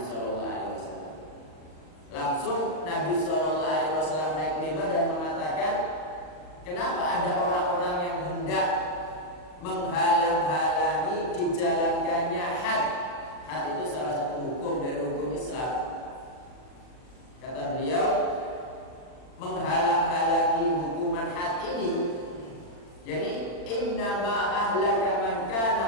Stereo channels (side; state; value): right; late; 40 ms